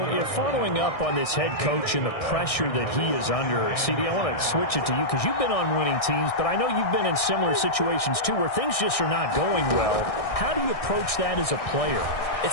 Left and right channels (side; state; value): right; late; 1.6 ms